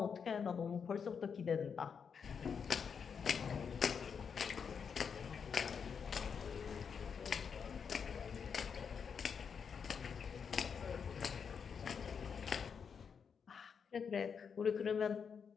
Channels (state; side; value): quieter; right; 6.5 dB